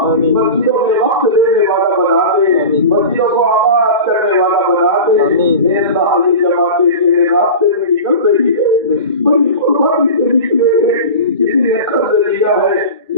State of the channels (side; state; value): both; inverted; correlation -0.31